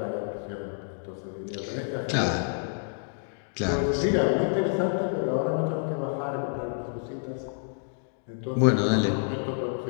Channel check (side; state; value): right; silent; digital silence